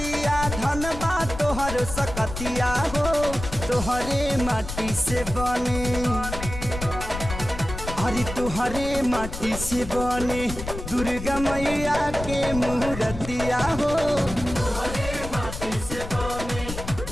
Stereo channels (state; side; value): noise; left; rumble, 8 dB below the sound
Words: धन बा तोहर सकतिया हो तोहरे माटी से बने अरे तोहरे माटी से बने दुर्गा मैया के मूर्तिया हो तोहरे माटी से बने